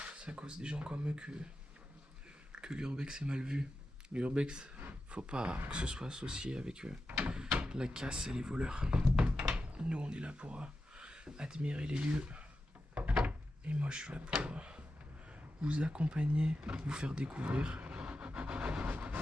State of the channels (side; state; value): both; normal; correlation 0.91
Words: c'est à cause des gens comme eux que l'urbex est mal vu. L'urbex, faut pas que ce soit associé avec la casse et les voleurs. Nous, on est là pour admirer les lieux. Et moi, je suis là pour vous accompagner, vous faire découvrir